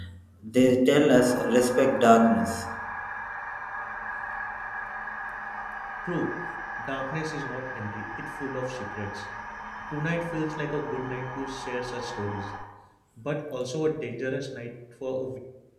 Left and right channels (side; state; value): both; identical; correlation 1.00